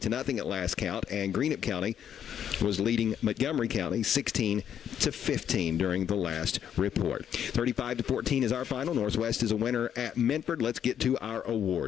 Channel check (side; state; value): right; quieter; 9.2 dB